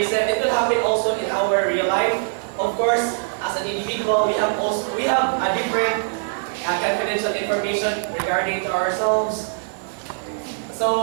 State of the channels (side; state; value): left; silent; digital silence